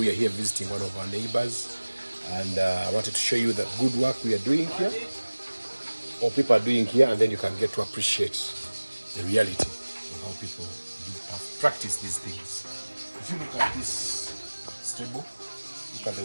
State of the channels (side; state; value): both; inverted; correlation -1.00